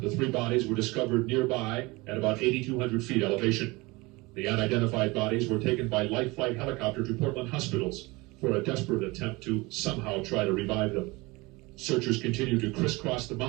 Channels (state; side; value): quieter; left; 23.5 dB